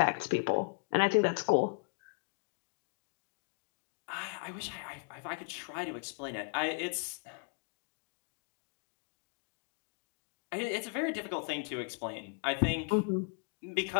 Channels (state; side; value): quieter; right; 34.7 dB